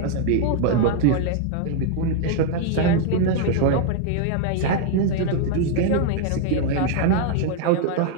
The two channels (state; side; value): different; both; correlation 0.00